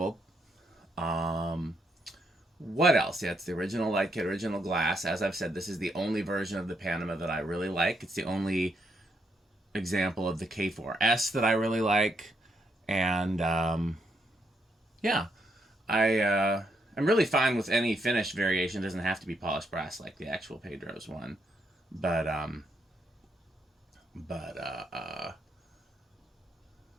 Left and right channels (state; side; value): normal; both; correlation 0.77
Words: What else? Yeah, it's the original light kit, original glass. As I've said, this is the only version of the Panama that I really like. It's the only example of the K4S that I really like. And yeah, I'm really fine with any finish variation. It doesn't have to be polished brass like the actual Pedro's one. But but